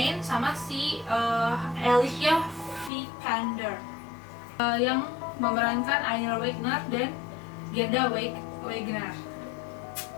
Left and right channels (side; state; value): right; drops out; at 2.9 s